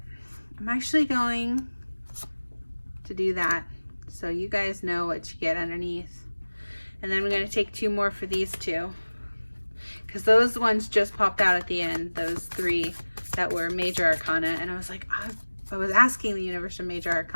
I'm actually going to do that so you guys know what you get underneath. And then we're going to take 2 more for these 2. Because those ones just popped out at the end, those 3 that were Major Arcana. And I was like, I was asking the universe for Major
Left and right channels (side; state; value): both; inverted; correlation -1.00